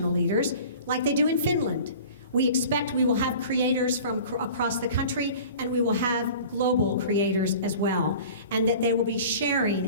leaders, like they do in Finland. We expect we will have creators from across the country, and we will have global creators as well, and that they will be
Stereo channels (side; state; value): both; inverted; correlation -0.42